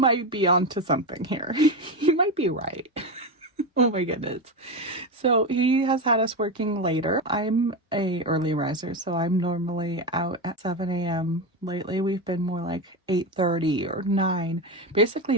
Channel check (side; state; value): both; normal; correlation 0.16